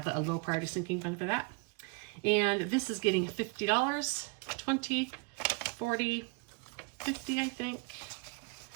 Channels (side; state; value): left; quieter; 31.6 dB